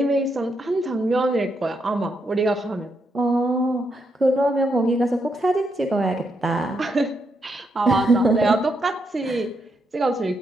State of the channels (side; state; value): both; normal; correlation 0.80